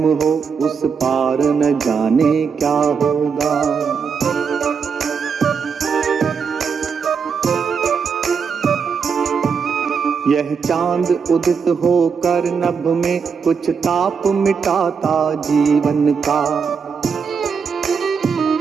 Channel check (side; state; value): left; quieter; 6.0 dB